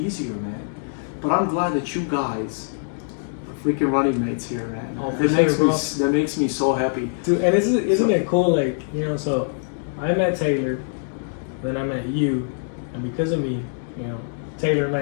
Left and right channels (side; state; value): right; silent; digital silence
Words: man. But I'm glad that you guys are freaking running mates here, man. Oh, for that sure, makes bro. that makes me so happy. Dude, and isn't it cool? Like, you know, so I met Taylor, then I met you, and because of me, you know, Taylor